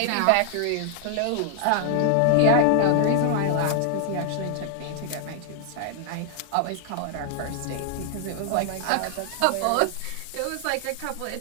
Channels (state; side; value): different; both; correlation 0.00